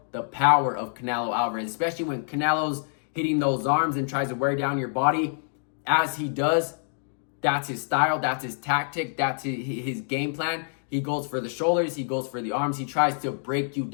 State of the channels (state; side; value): silent; right; digital silence